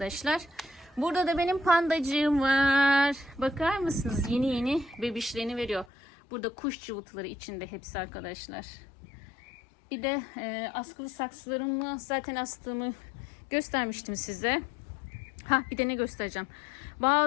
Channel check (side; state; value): right; drops out; at 5.9 s